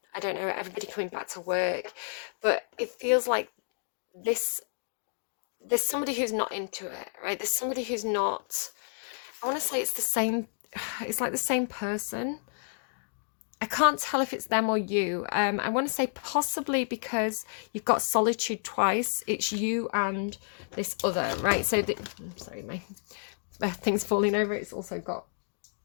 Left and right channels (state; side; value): silent; right; digital silence